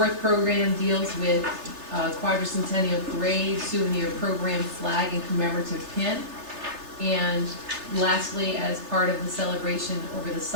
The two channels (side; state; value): left; late; 3.3 ms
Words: program deals with quadricentennial parade, souvenir program, flag, and commemorative pin. And lastly, as part of the celebration over the